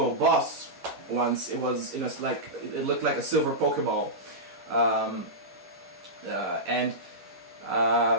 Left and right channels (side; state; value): left; late; 11 ms